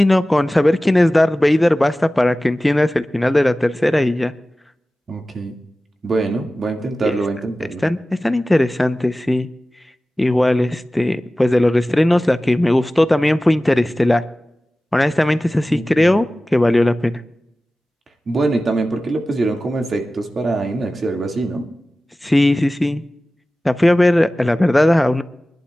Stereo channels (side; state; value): both; normal; correlation 0.96